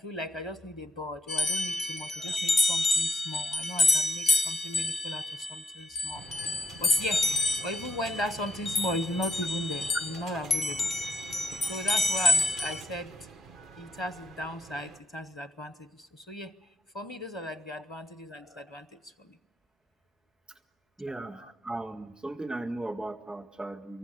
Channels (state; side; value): normal; both; correlation 0.73